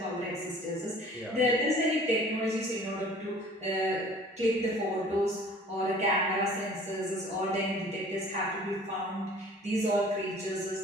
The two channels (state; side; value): normal; both; correlation 0.49